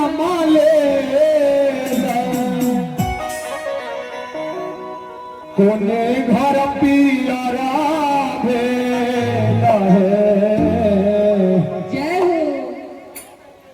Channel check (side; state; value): both; identical; correlation 1.00